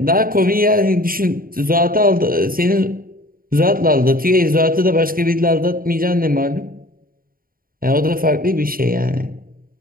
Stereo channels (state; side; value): late; left; 0.42 ms